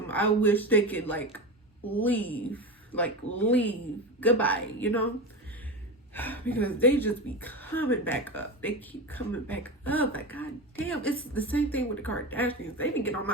I wish they could leave goodbye, you know, because they just be coming back up. They keep coming back up. Like, god damn, it's the same thing with the Kardashians. They be getting on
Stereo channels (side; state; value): both; normal; correlation 0.23